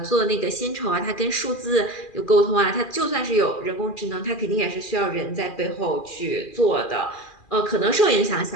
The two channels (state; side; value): late; right; 2.4 ms